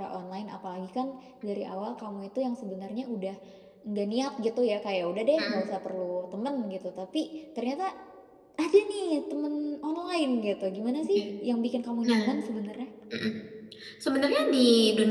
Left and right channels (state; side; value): identical; both; correlation 1.00